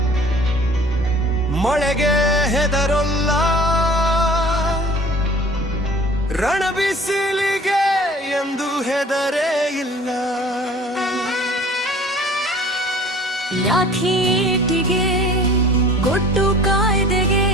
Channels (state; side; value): normal; both; correlation 0.48